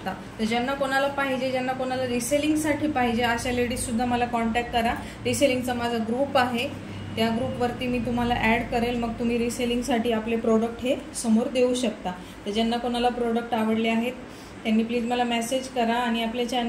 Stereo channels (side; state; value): both; identical; correlation 1.00